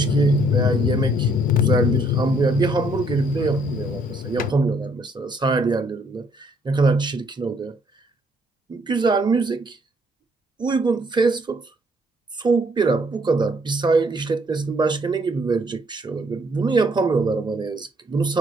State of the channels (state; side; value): normal; both; correlation 0.67